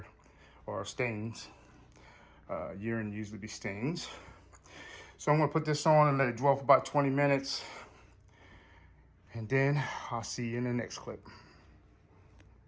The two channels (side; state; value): both; identical; correlation 1.00